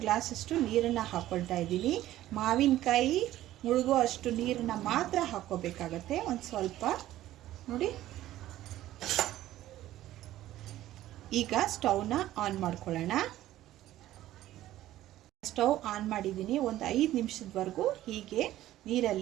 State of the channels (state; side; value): quieter; left; 14.3 dB